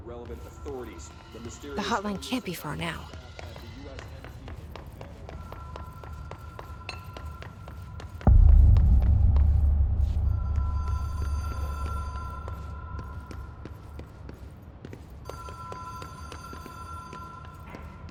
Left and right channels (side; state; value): both; identical; correlation 1.00